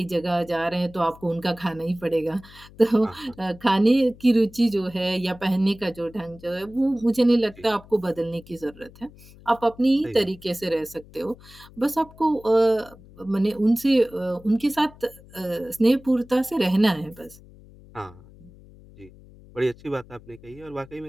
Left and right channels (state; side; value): noise; left; hum, 22 dB below the sound